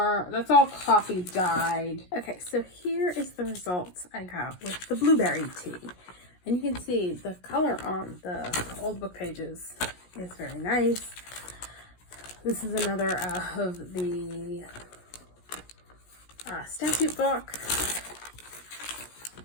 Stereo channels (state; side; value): late; right; 17 ms